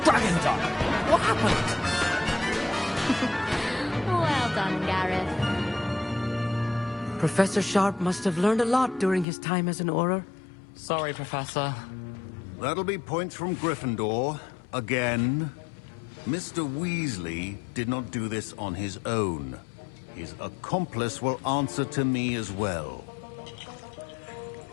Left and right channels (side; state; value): right; drops out; at 9.2 s